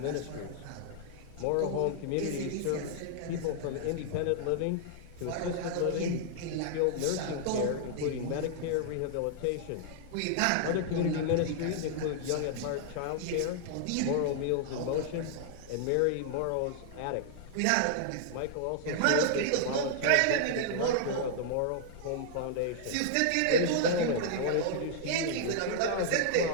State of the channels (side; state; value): both; different; correlation -0.01